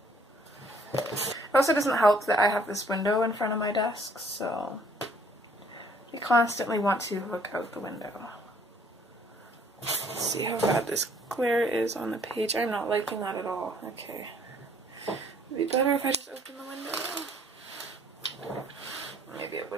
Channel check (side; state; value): both; normal; correlation 0.60